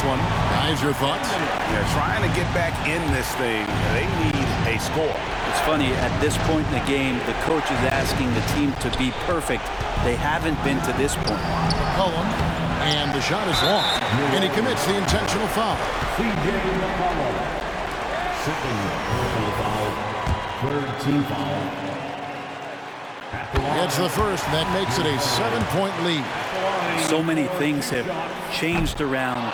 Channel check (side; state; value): both; identical; correlation 1.00